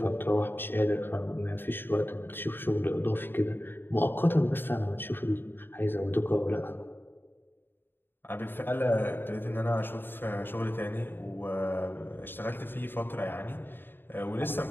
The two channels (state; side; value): late; right; 0.098 ms